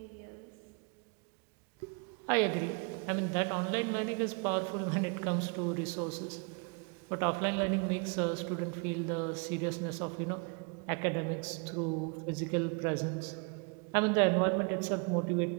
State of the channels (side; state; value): left; quieter; 34.6 dB